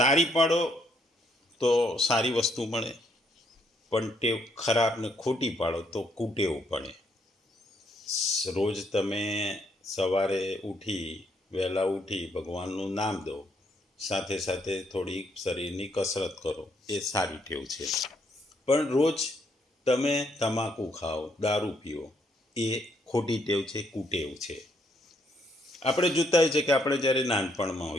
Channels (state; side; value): normal; both; correlation 0.72